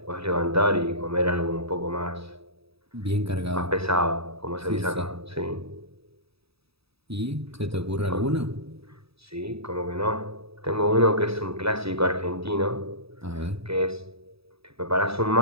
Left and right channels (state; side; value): late; left; 0.77 ms